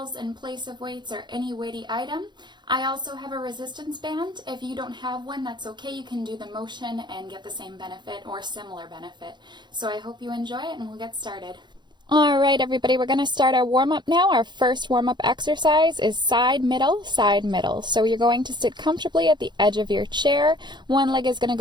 in place of weights or any weighty item. I also have a resistance band. If you don't have one, that's okay. You can do the motion and get the same benefit or similar benefit. So I hope you enjoy it, and we'll get started. All right, everybody, we're going to start our warm-up now. Our first warm-up exercise is side, middle, side, middle. So you're going to sit comfortably at the edge of your chair. One leg is going to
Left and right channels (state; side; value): late; left; 0.22 ms